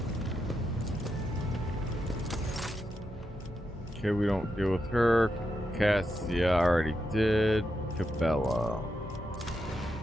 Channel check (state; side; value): normal; both; correlation 0.85